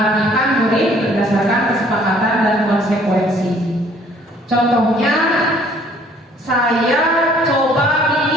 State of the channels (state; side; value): normal; both; correlation 0.58